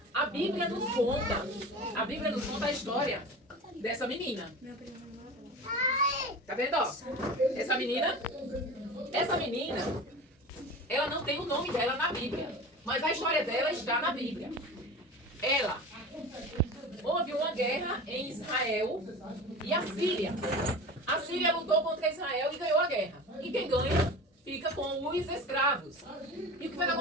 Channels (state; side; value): normal; both; correlation 0.33